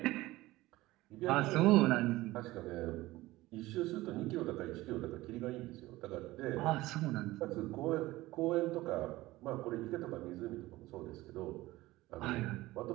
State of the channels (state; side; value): quieter; left; 18.3 dB